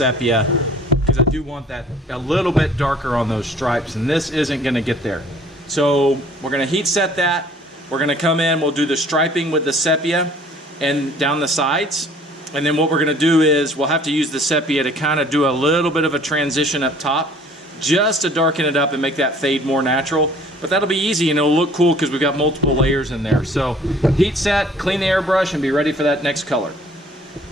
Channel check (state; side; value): normal; both; correlation 0.54